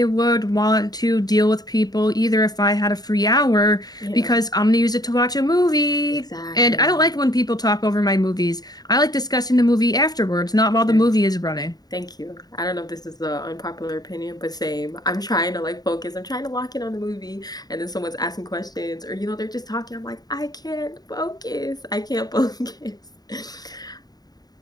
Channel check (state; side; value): late; right; 0.19 ms